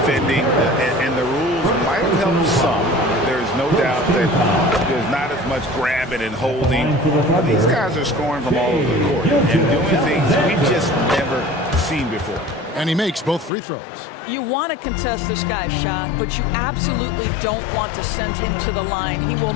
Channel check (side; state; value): right; drops out; at 13.5 s